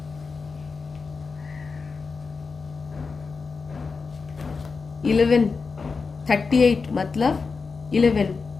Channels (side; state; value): right; quieter; 4.8 dB